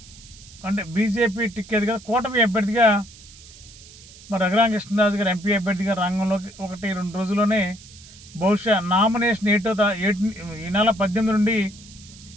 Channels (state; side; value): noise; right; hiss, 20 dB below the sound